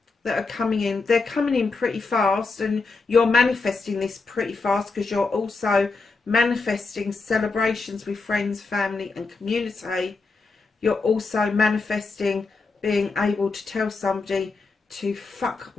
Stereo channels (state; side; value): quieter; right; 4.1 dB